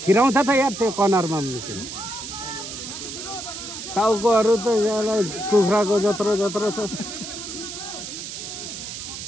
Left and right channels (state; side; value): noise; right; hiss, 9 dB below the sound